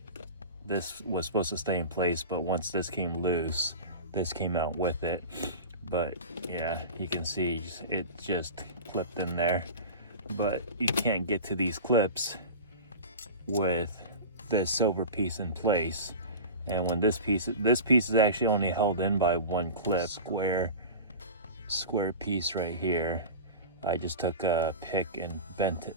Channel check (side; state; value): both; inverted; correlation -0.31